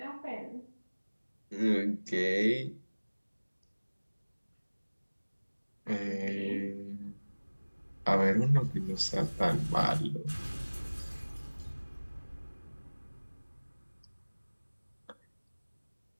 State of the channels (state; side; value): inverted; both; correlation -1.00